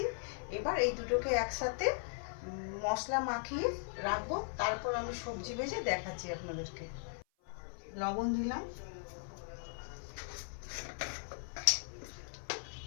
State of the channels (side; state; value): right; silent; 52 dB below the other